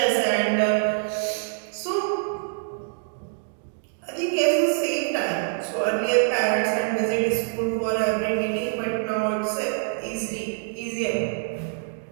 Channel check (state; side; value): silent; left; digital silence